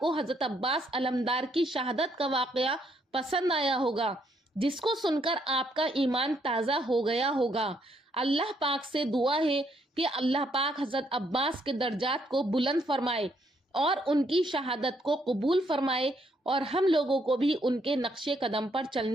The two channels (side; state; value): both; normal; correlation 0.72